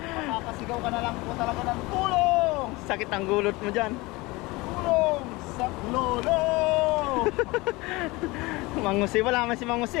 Makakasigaw ka na lang po talaga ng tulong! sakit ang gulot mo dyan. Tulong sa lolo! Mangusi, wala man si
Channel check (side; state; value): right; quieter; 22.7 dB